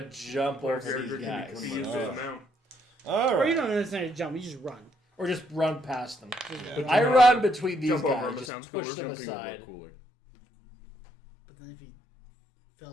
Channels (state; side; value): drops out; right; at 8.5 s